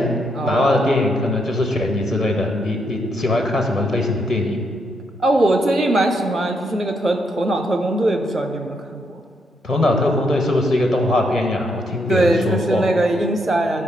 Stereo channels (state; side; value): normal; both; correlation 0.77